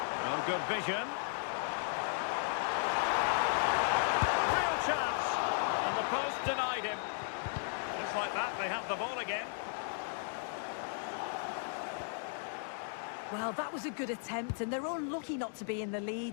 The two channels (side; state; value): right; silent; digital silence